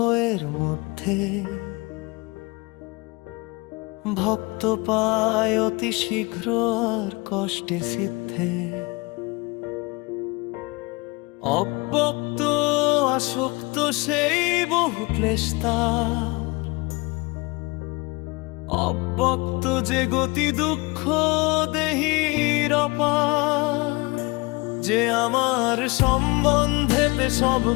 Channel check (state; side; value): quieter; right; 25.5 dB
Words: মধ্যে ভক্ত পায় অতি শীঘ্র আর কষ্টে সিদ্ধে। অব্যক্ত আসক্ত সেই বহু ক্লেশ তার, অব্যক্ত যে গতি দুঃখ দেহির অপার। যে আমার সম্বন্ধেতে সব